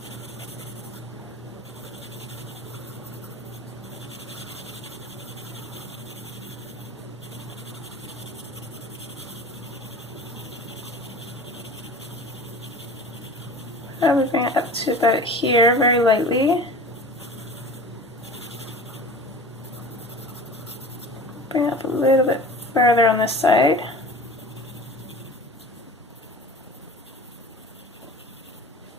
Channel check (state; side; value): normal; both; correlation 0.38